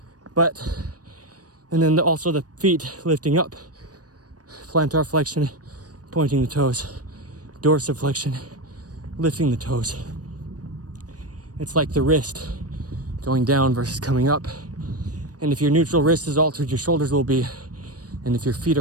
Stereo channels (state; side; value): late; left; 0.68 ms